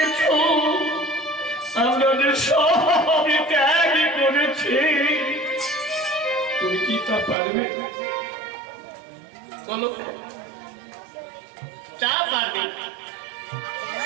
আমরা সব ত্যাগ করেছি। তুমি কি তা পারবে? বলো, তা পারবে?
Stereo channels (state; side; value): drops out; left; at 7.4 s